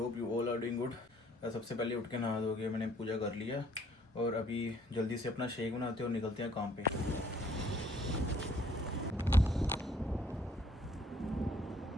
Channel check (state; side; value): normal; both; correlation 0.61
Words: you all are doing good. सबसे पहले उठ के नहा धो के मैंने पूजा कर लिया और अभी जल्दी से अपना शेक बनाते हैं और निकलते हैं काम पे।